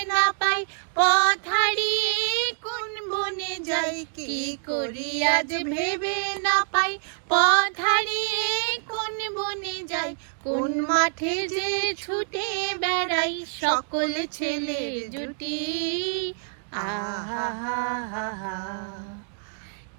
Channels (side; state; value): left; silent; digital silence